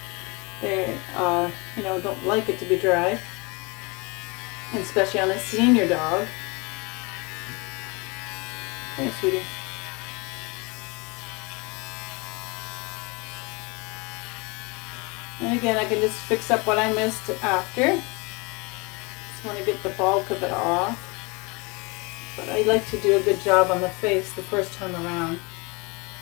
They, don't like it to be dry. And especially on a senior dog. Here, sweetie. And again, I can just fix up what I missed after. Just want to get the bulk of it off. But I like to do a good job on the face the first time around.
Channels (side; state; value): right; quieter; 28.2 dB